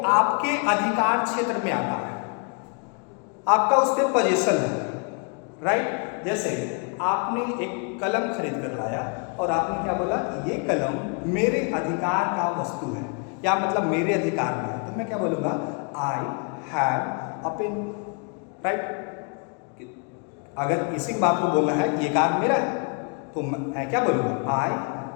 आपके अधिकार क्षेत्र में आता है, आपका उस पर पोजीशन है, राइट। जैसे आपने एक कलम खरीद कर लाया और आपने क्या बोला कि ये कलम मेरे अधिकार का वस्तु है, या मतलब मेरे अधिकार में है, तो मैं क्या बोलूँगा, I have a pen, right. अगर इसी बात को बोलना है कि ये कार मेरा है तो मैं क्या बोलूँगा, आई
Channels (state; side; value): quieter; right; 37.2 dB